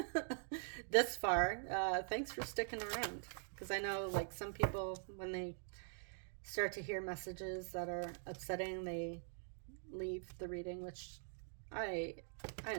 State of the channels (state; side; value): silent; left; digital silence